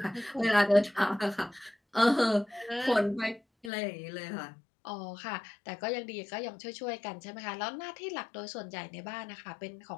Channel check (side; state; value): right; drops out; at 3.7 s